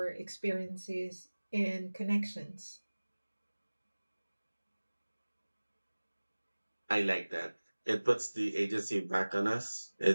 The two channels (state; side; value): inverted; both; correlation -1.00